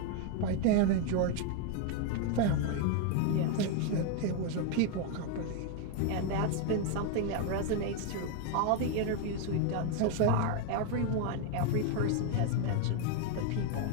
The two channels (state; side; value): different; both; correlation 0.01